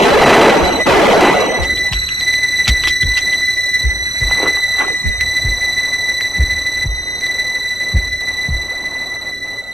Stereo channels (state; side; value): normal; both; correlation 0.85